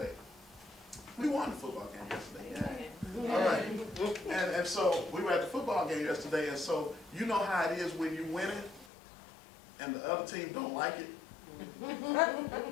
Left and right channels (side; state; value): right; drops out; at 8.9 s